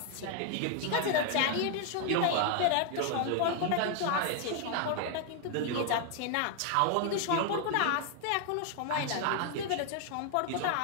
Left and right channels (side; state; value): both; different; correlation 0.00